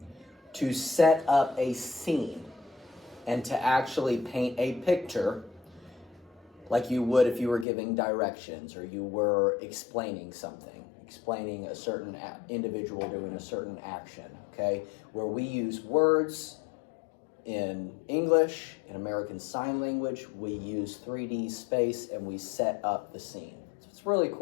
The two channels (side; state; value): right; drops out; at 7.7 s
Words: to set up a scene and to actually paint a picture like you would if you were giving directions or you were explaining something, explaining a certain individual doing a certain action, okay? Where we use words in English, in American Sign Language, we use 3D space and we set up the scene. So what's really